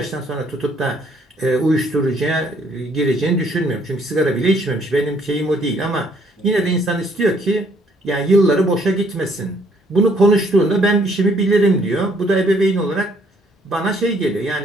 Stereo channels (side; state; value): both; normal; correlation 0.65